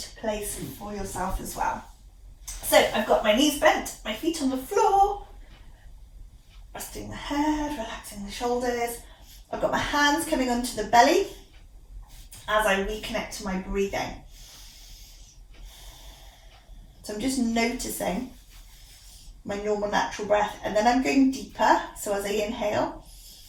place for yourself as well. So I've got my knees bent, my feet on the floor, resting the head, relaxing the shoulders. I've got my hands coming onto the belly as I reconnect to my breathing. So I'm just noticing my normal natural breath, and then I'm going deeper. So as I inhale,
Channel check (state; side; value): identical; both; correlation 1.00